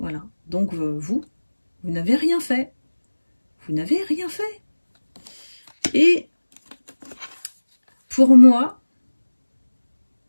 Donc, vous n'avez rien fait. Vous n'avez rien fait. Et pour moi,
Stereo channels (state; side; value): inverted; both; correlation -1.00